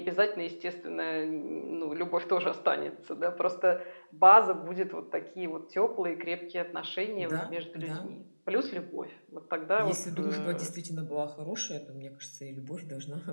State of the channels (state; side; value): inverted; both; correlation -1.00